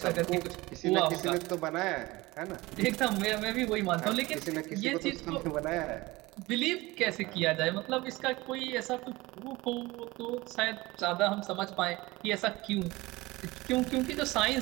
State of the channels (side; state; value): left; quieter; 21.0 dB